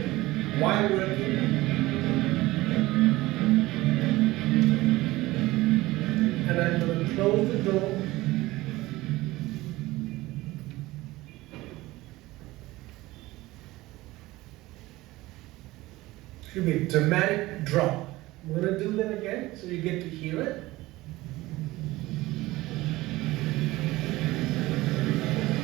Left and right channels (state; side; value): quieter; left; 18.8 dB